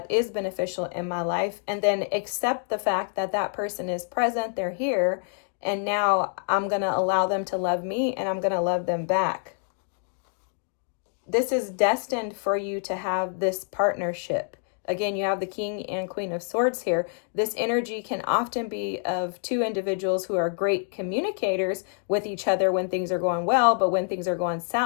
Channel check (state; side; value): silent; right; 56 dB below the other